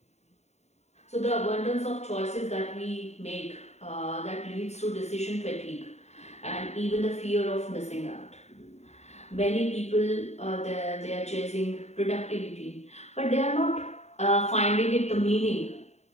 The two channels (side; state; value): right; late; 0.32 ms